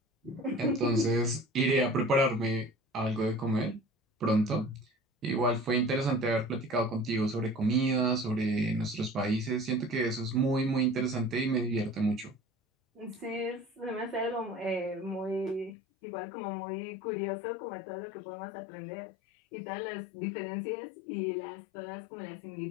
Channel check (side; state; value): right; drops out; at 15.8 s